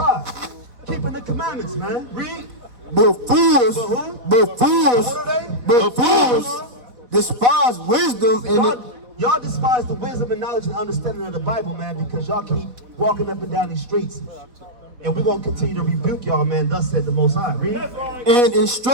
Keeping the commandments, man. Read. But fools, What are they? but fools despise wisdom and Y'all despise the wisdom and knowledge and understanding of the Bible, man, because y'all keep walking up and down these streets. And we're going to continue to rebuke y'all, man. Thus said the Most High. Read. and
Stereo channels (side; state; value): left; late; 4.5 ms